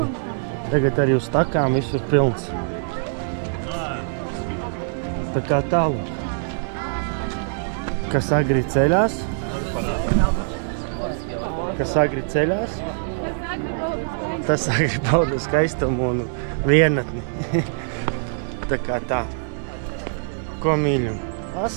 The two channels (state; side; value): silent; left; digital silence